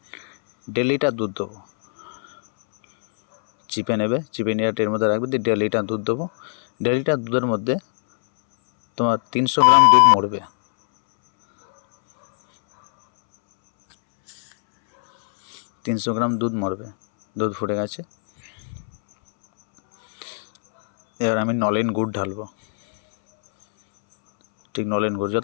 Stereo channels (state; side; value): silent; right; 65 dB below the other